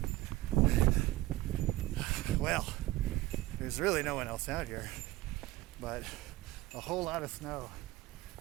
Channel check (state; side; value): quieter; left; 17.3 dB